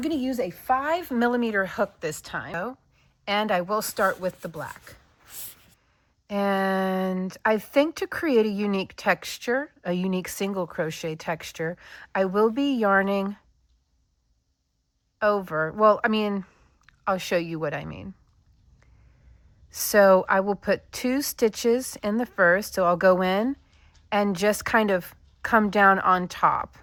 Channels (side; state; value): both; identical; correlation 1.00